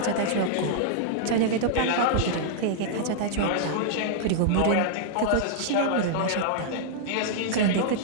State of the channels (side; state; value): both; different; correlation -0.01